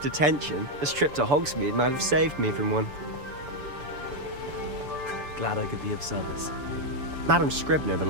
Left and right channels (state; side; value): late; left; 6.9 ms